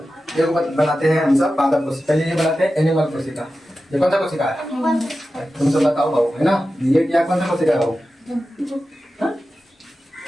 ये बनाते हैं हम सब पादप कोशिका। पहले ये बनाते हैं एनिमल कोशिका। ये कौन सा कोशिका है? तुम सब बताओ बाबू, है ना। ये क्या कौन सा कोशिका है बाबू?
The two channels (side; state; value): both; normal; correlation 0.93